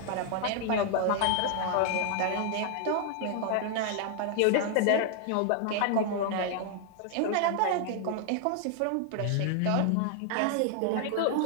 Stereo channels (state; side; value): different; both; correlation 0.00